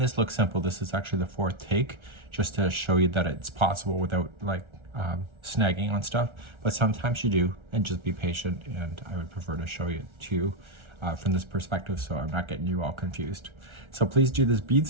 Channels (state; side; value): late; left; 1.3 ms